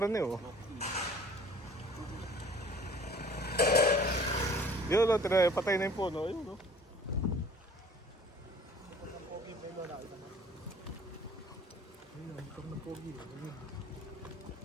eh. Oh. Yun, patay na yung puno. Ayun, oh.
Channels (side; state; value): both; normal; correlation 0.50